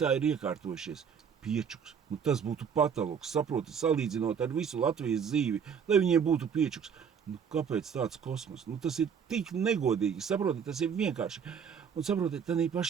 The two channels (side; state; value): left; quieter; 7.1 dB